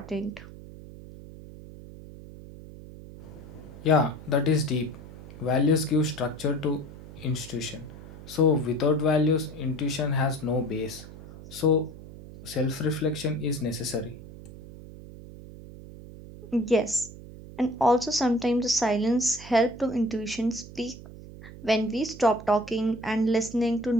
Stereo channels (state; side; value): noise; right; hum, 15 dB below the sound